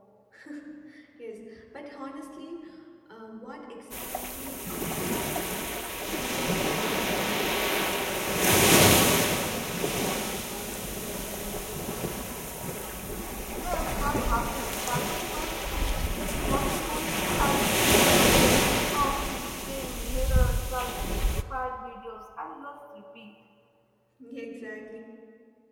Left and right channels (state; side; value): identical; both; correlation 1.00